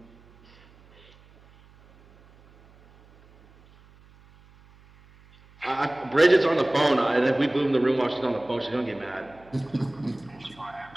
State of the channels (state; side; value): noise; right; hum, 27 dB below the sound